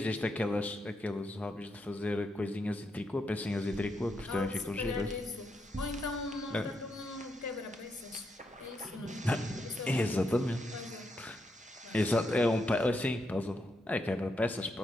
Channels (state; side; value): normal; both; correlation 0.81